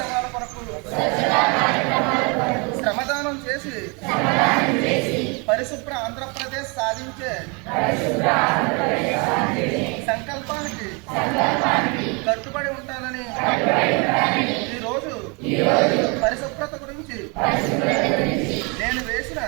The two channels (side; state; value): left; quieter; 31.3 dB